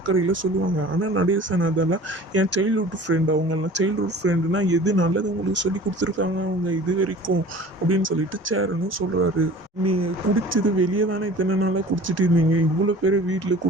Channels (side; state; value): both; normal; correlation 0.44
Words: சொல்லுவாங்க. ஆனால் நடேசன் அதெல்லாம் என் சைல்ட்ஹுட் ஃப்ரெண்ட், அவங்கெல்லாம் சைல்ட்ஹுட் ஃப்ரெண்டுனா எது நல்லது உங்களுக்கு சொல்லி கொடுத்துருக்காங்க அவங்க இது வரைக்கும் அப்படின்னு சொல்லிட்டு சேரனும் சொல்கிறாரு. நீங்கள் குடிச்சது வெளியே தானே இத்தனை நாளாக குடிச்சிட்டு இருந்தீங்க, இவ்வளோ பேர் வீட்டில்